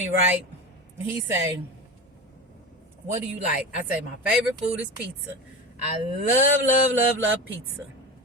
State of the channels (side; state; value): both; normal; correlation 0.27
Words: right? He say, what do you like? I say, my favorite food is pizza. I love pizza.